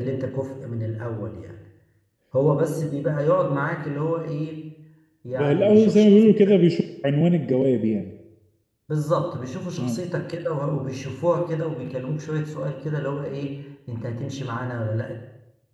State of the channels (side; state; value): both; identical; correlation 1.00